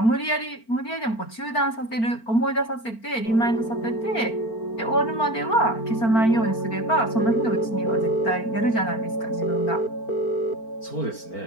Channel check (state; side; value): late; right; 4.4 ms